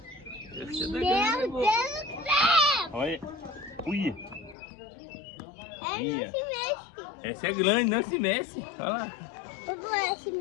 Meu Deus do céu! Olha. Ui. É isso mesmo. Essa é grande, não se mexe. Olha lá. Eu vou se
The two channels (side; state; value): right; drops out; at 4.5 s